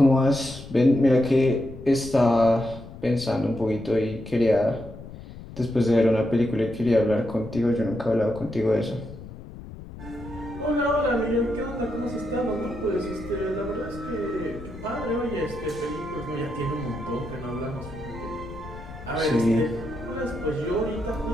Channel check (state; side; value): noise; left; rumble, 14 dB below the sound